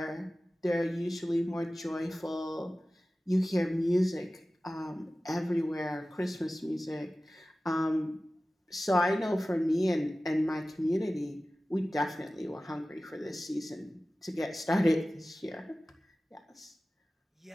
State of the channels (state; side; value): normal; both; correlation 0.96